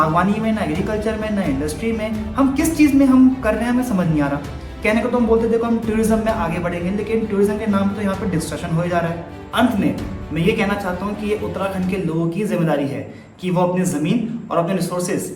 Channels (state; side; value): identical; both; correlation 1.00